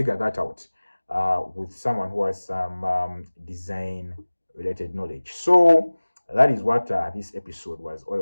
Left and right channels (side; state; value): both; inverted; correlation -1.00